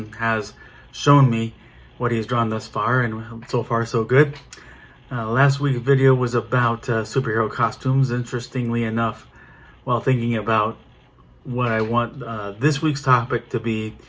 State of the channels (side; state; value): both; identical; correlation 1.00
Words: has shown me what he's drawn thus far, and so far so good. Last week's video was about superhero costumes. Interestingly enough, while thinking about what I want this week's topic to be,